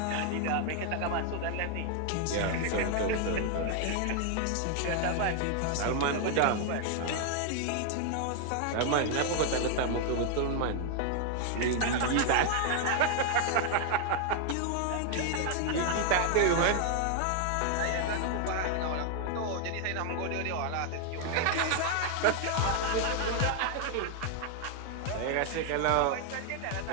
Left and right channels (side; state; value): both; different; correlation 0.00